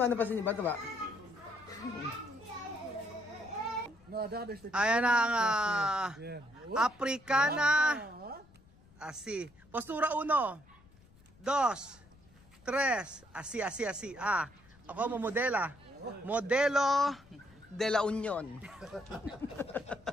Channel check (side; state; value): left; noise; rumble, 26 dB below the sound